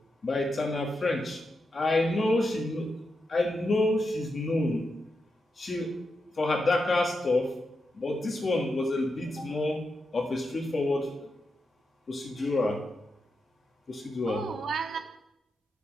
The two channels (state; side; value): normal; both; correlation 0.86